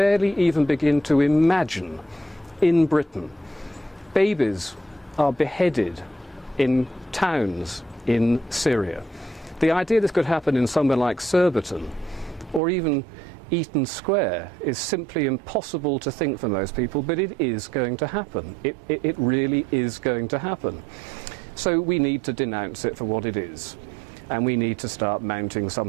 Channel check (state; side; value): drops out; left; at 12.6 s